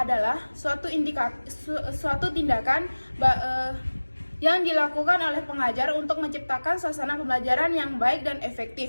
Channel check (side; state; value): both; inverted; correlation -1.00